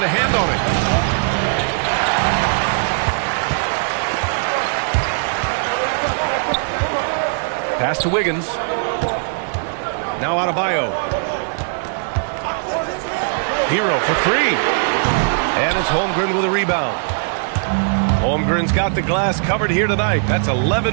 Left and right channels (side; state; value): left; silent; 66 dB below the other